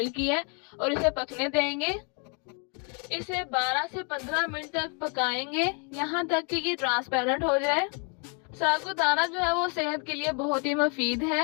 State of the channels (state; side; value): quieter; right; 37.2 dB